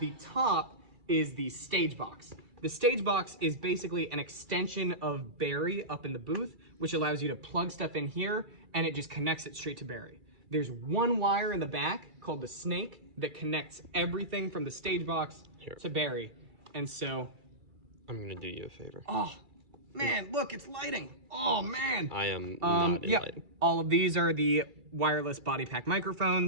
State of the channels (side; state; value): left; late; 2.3 ms